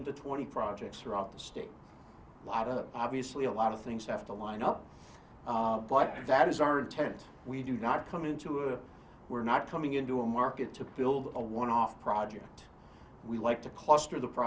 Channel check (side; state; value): both; identical; correlation 1.00